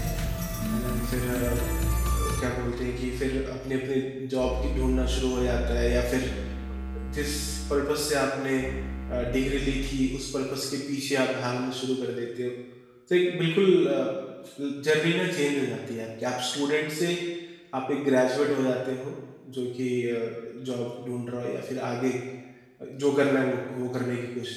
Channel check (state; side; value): identical; both; correlation 1.00